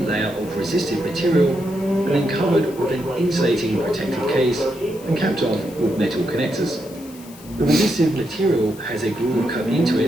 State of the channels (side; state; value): left; noise; hiss, 21 dB below the sound